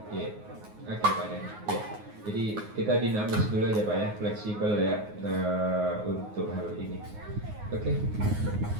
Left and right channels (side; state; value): left; late; 9.5 ms